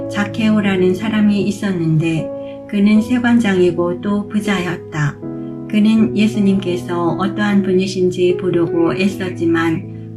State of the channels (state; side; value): identical; both; correlation 1.00